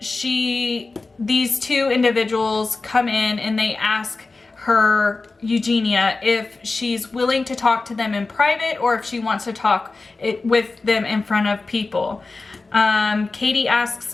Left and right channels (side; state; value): right; quieter; 3.6 dB